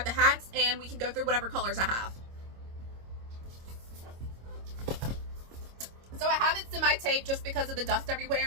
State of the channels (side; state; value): left; late; 25 ms